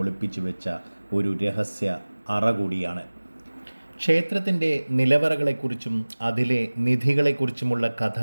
ഒളിപ്പിച്ചു വെച്ച ഒരു രഹസ്യ അറ കൂടിയാണ്. ക്ഷേത്രത്തിൻ്റെ നിലവറകളെക്കുറിച്ചും അതിലെ നിധികളെക്കുറിച്ചുമുള്ള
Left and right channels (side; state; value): both; inverted; correlation -1.00